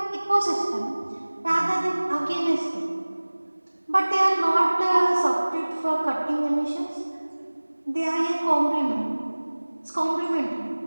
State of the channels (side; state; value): both; inverted; correlation -1.00